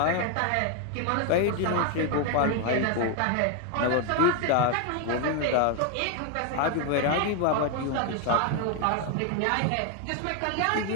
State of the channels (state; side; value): different; both; correlation 0.01